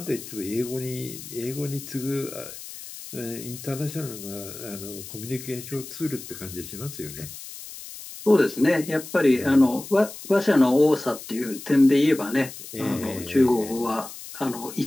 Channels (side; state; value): left; noise; hiss, 13 dB below the sound